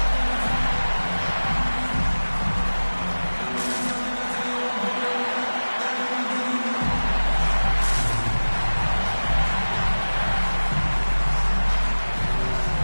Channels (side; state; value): both; inverted; correlation -1.00